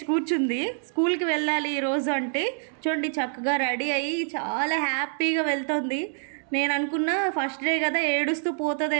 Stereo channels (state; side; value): silent; left; 60 dB below the other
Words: కూర్చుంది. స్కూల్కి వెళ్ళాలి ఈరోజు అంటే చూడండి, చక్కగా రెడీ అయ్యి చాలా హ్యాపీగా వెళ్తుంది. నేను అనుకున్నా ఫస్ట్ డే కదా ఏడుస్తూ